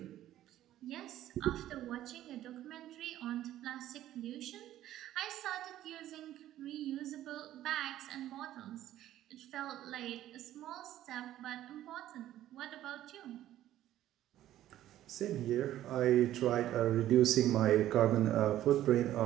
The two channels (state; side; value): quieter; left; 13.1 dB